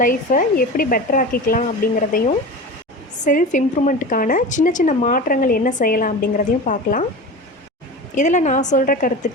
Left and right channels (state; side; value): normal; both; correlation 0.30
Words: லைஃப்பை எப்படி பெட்டர் ஆக்கிக்கலாம் அப்படிங்கிறதையும், செல்ஃப் இம்ப்ரூவ்மெண்ட்டுக்கான சின்ன சின்ன மாற்றங்கள் என்ன செய்யலாம் அப்படிங்கிறதையும் பார்க்கலாம். இதில் நான் சொல்கிற